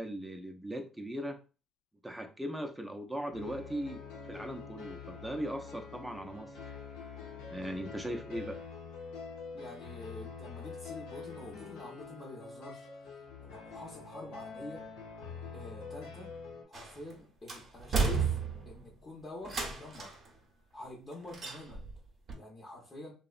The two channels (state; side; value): normal; both; correlation 0.68